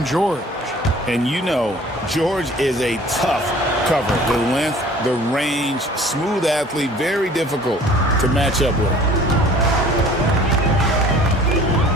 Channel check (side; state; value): both; normal; correlation 0.50